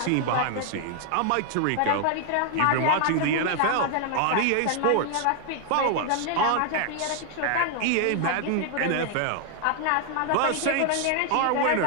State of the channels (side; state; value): both; different; correlation 0.00